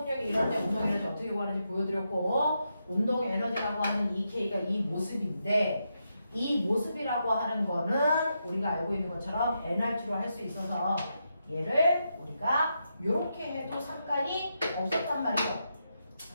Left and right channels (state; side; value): inverted; both; correlation -0.84